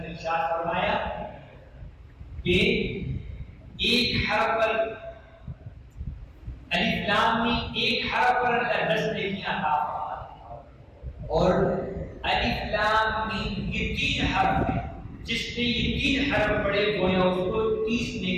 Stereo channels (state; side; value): identical; both; correlation 1.00